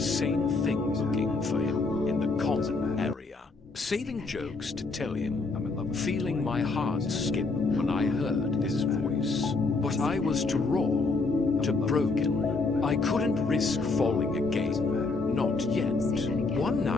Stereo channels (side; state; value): right; quieter; 3.8 dB